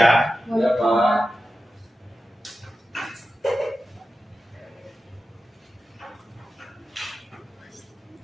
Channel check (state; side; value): normal; both; correlation 0.92